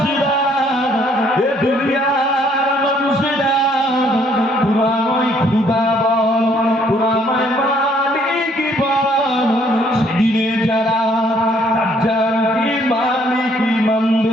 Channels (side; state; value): both; normal; correlation 0.65